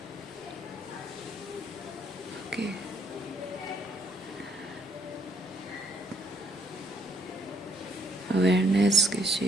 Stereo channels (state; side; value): normal; both; correlation 0.69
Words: ओके, अवेयरनेस किस